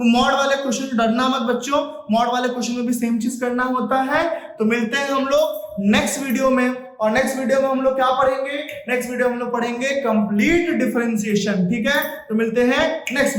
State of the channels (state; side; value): identical; both; correlation 1.00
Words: मॉड वाले क्वेश्चन डरना मत बच्चों, मॉड वाले क्वेश्चन में भी सेम चीज करना होता है। तो मिलते हैं हम लोग नेक्स्ट वीडियो में, और नेक्स्ट वीडियो में हम लोग क्या पढ़ेंगे, नेक्स्ट वीडियो में हम लोग पढ़ेंगे कंप्लीट डिफरेंशिएशन, ठीक है। तो मिलते हैं नेक्स्ट